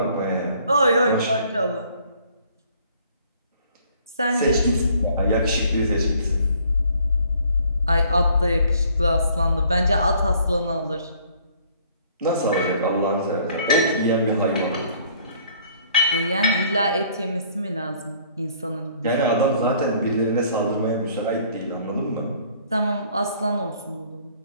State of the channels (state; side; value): inverted; both; correlation -0.59